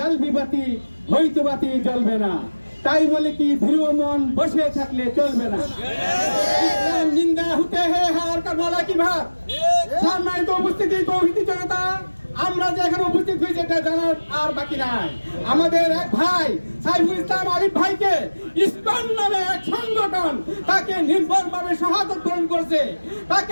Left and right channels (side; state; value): both; inverted; correlation -1.00